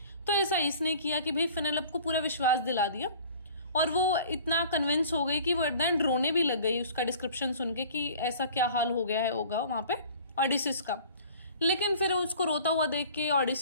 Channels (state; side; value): inverted; both; correlation -0.47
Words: तो ऐसा इसने किया कि भाई फेनेलोप को पूरा विश्वास दिला दिया, और वो इतना कन्विंस हो गई कि वो एट द एंड रोने भी लग गई उसका डिस्क्रिप्शन सुन के कि ऐसा क्या हाल हो गया है होगा वहां पे ओडिसिस का। लेकिन फिर उसको रोता हुआ देख के